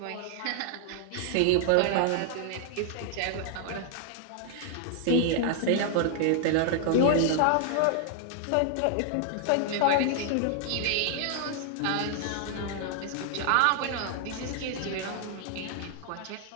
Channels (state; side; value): different; both; correlation 0.00